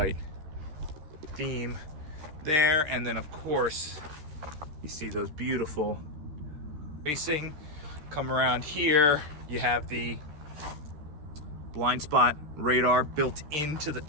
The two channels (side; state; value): left; late; 13 ms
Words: theme there. And then, of course, you see those beautiful racing. Come around here, you have the blind spot radar built into the